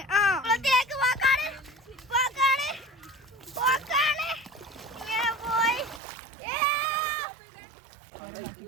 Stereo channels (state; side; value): drops out; left; at 6.0 s